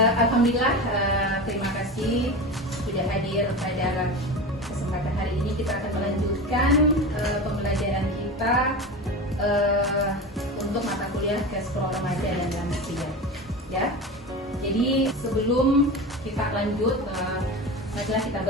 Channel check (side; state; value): both; normal; correlation 0.27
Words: Alhamdulillah, terima kasih sudah hadir pada kesempatan hari ini. Kita akan melanjutkan pembelajaran kita untuk mata kuliah Gastro Remaja dan Lansia. Ya. Jadi sebelum kita lanjut, marilah kita